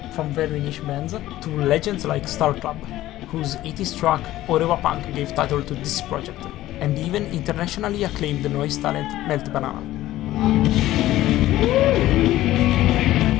from very niche bands to legends like Star Club, whose 80s track Orewa Punk gave title to this project, and even internationally acclaimed noise talent Melt Banana.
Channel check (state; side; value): quieter; right; 15.1 dB